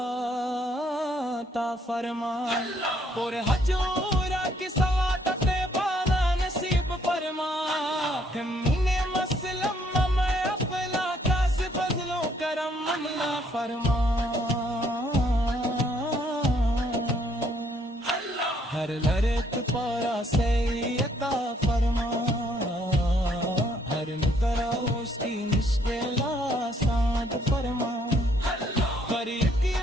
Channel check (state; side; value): normal; both; correlation 0.68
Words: عطا فرما، اور حجورہ کی سعادت بالا نصیب فرما، ہمیں مسلم میں اپنا کاس فضل و کرم عطا فرما، ہر لرک پارا سے عطا فرما، ہر مقرہ اس کی مشکل آسان فرما، ہر